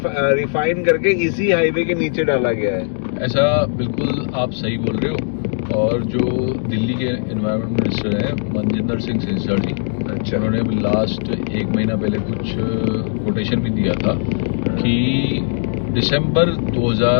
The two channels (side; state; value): right; silent; digital silence